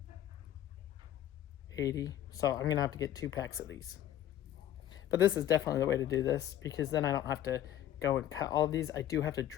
80. So I'm gonna have to get 2 packs of these. But this is definitely the way to do this, because then I don't have to go and cut all of these. I do have to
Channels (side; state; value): right; quieter; 11.9 dB